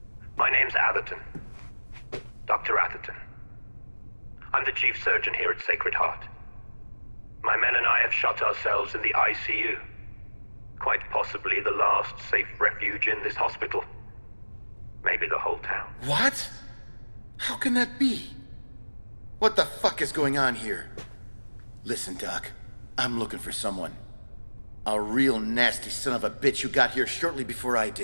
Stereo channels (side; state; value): both; inverted; correlation -1.00